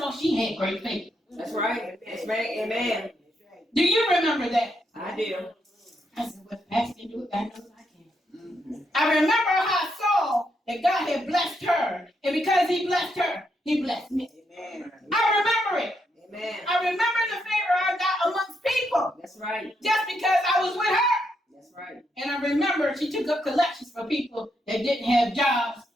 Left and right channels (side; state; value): both; normal; correlation 0.79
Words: she had great faith. That's right. That's right. Amen. Do you remember that? I do. I said, well, Pastor can do it, God knows I can. I remember how I saw that God had blessed her. And because he blessed her, he blessed me. Amen. I remember it. Amen. I remember the favor I got amongst people. That's right. Just because I was with her. That's right. And I remember she took up collections for people that didn't have jobs,